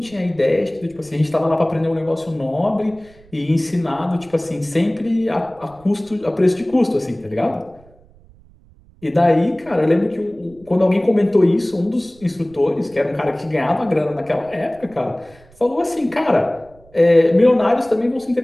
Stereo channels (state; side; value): noise; right; rumble, 27 dB below the sound